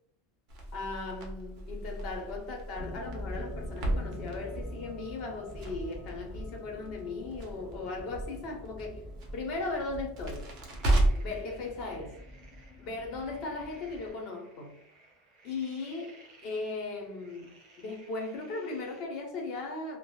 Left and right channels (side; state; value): both; normal; correlation 0.52